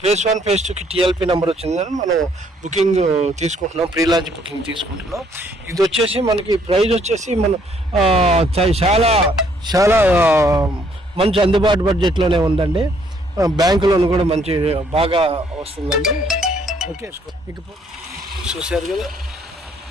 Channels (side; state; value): both; normal; correlation 0.66